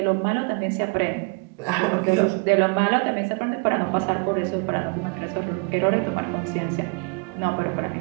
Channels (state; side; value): quieter; left; 33.3 dB